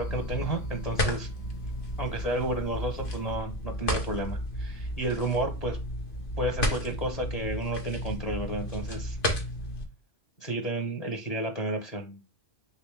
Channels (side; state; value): right; late; 2.5 ms